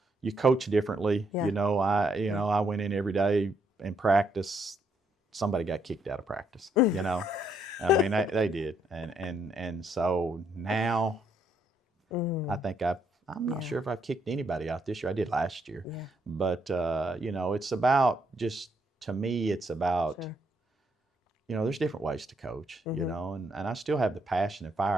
coach differently. Yeah. You know, I went in every day in practice. Somebody got kicked out of practice. You know, I mean they did, and so now I think I'm not sure if I've kicked anybody out this year. I did last year, but you know, it's about to me, it's about. Sure. You know, there's different ways to coach, you know, and I still have the passion and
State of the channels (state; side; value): normal; both; correlation 0.73